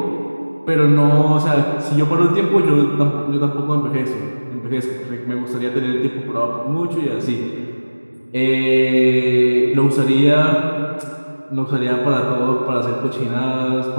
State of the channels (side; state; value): both; inverted; correlation -1.00